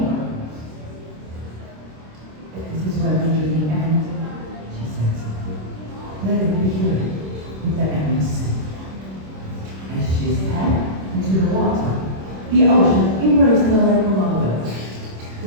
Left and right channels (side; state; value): left; late; 26 ms